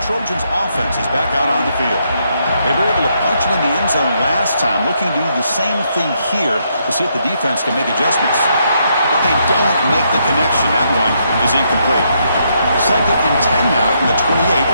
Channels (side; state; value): both; inverted; correlation -0.76